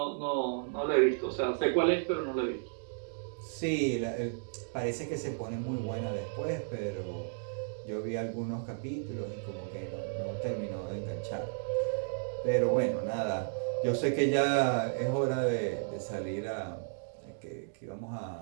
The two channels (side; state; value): left; silent; digital silence